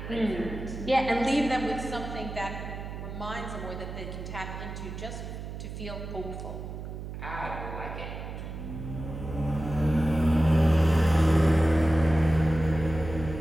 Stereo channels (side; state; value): right; noise; hum, 9 dB below the sound